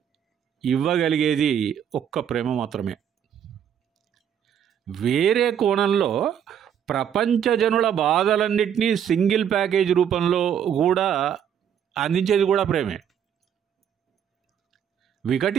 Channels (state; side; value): quieter; left; 8.9 dB